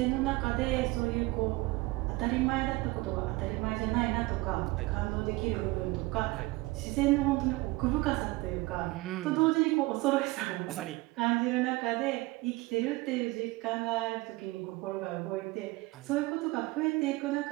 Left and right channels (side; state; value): left; quieter; 21.7 dB